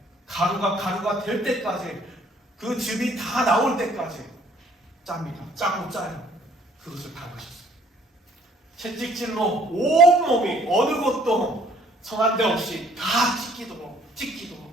가루가 될 때까지, 그 즙이 다 나올 때까지 짭니다. 짜고 짜요. 그것을 밟으셨어요. 채찍질로 온몸이 어느 곳도 성한 데 없이 다 찢기도록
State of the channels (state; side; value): normal; both; correlation 0.60